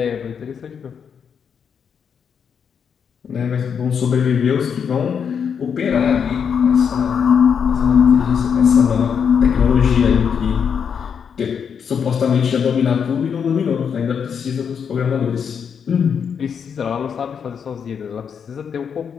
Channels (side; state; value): right; quieter; 7.1 dB